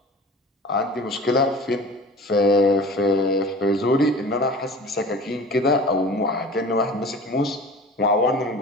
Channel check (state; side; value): normal; both; correlation 0.40